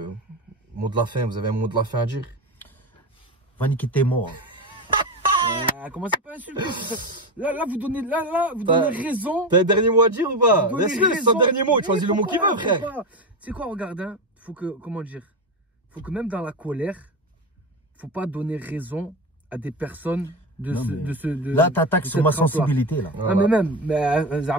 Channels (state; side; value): normal; both; correlation 0.18